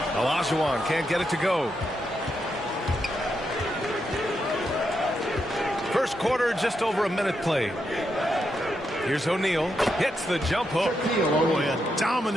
Olajuwon can't get it to go. First quarter, just over a minute played. Here's O'Neal. Hits the jump hook. Boy, a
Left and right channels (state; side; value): normal; both; correlation 0.83